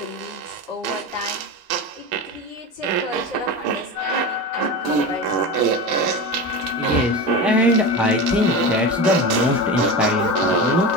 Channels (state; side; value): normal; both; correlation 0.25